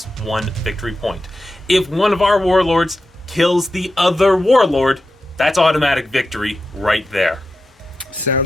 victory point. If one of our warlords kills the other warlord, that's automatic victory right there.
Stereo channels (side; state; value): both; normal; correlation 0.90